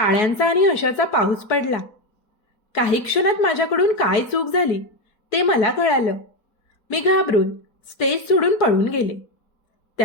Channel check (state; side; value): late; right; 4.3 ms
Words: आणि हशाचा पाऊस पडला. काही क्षणात माझ्याकडून काय चूक झाली ते मला कळालं. मी घाबरून स्टेज सोडून पळून गेले.